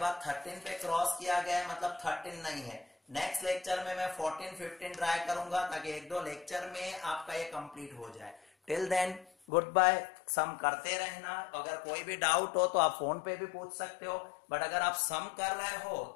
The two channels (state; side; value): drops out; right; at 9.3 s